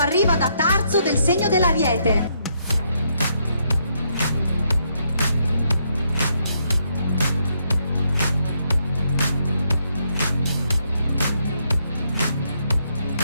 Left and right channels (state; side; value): inverted; both; correlation -0.76